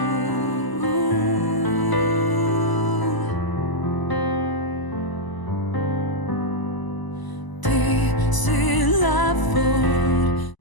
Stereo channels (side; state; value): right; late; 1.0 ms